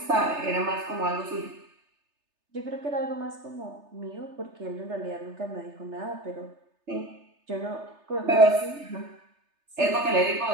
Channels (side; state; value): left; late; 3.3 ms